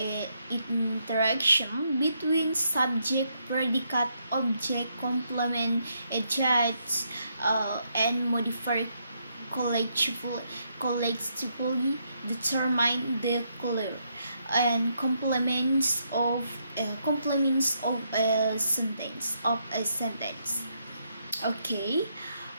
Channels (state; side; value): inverted; both; correlation -0.77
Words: interaction between subject, predicate, object, complement, adjunct, and modifier collectively determine the color and complements of a sentence Okay.